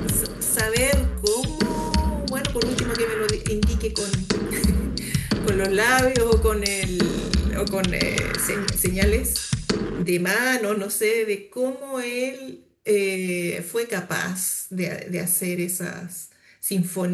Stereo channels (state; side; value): identical; both; correlation 1.00